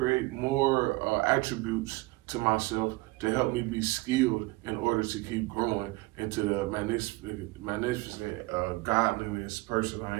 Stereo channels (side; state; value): left; quieter; 22.0 dB